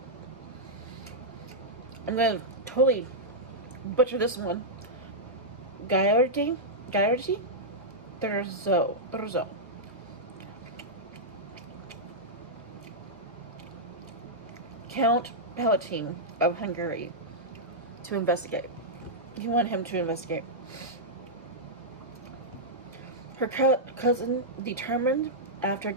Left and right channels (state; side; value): normal; both; correlation -0.09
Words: I'm going to totally butcher this one. Gaiardi? Terzo. Count Palatine of Hungary to investigate. He wanted him to investigate. Her cousin determined, after